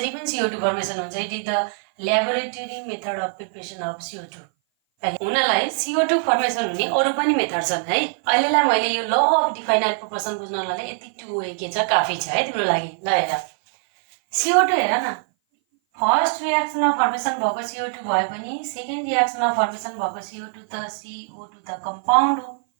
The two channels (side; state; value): left; silent; 58 dB below the other